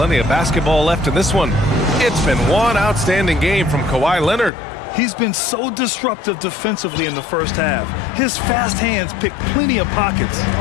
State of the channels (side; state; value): right; drops out; at 4.5 s